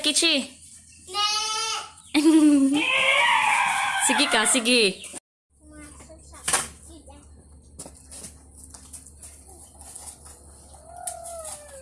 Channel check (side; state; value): both; identical; correlation 1.00